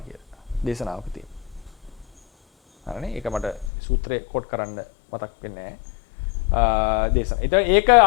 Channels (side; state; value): right; drops out; at 3.7 s